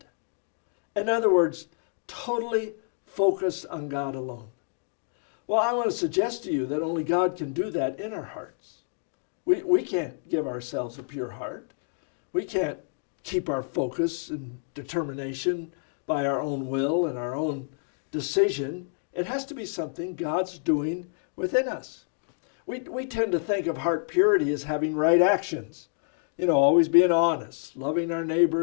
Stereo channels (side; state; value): right; silent; digital silence